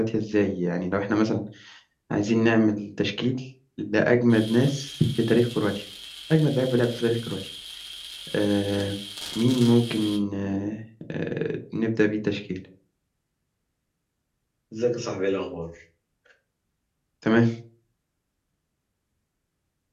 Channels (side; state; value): both; identical; correlation 1.00